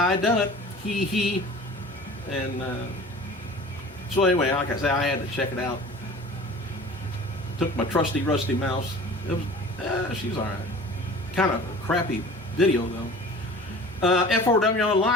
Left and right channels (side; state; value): both; normal; correlation 0.42